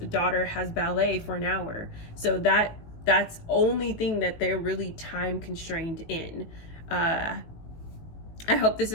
daughter has ballet for an hour. So that's only thing that they're really time constrained in. I hope this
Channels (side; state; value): right; late; 18 ms